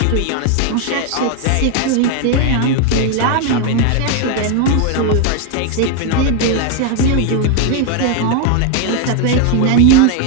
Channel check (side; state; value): both; different; correlation 0.01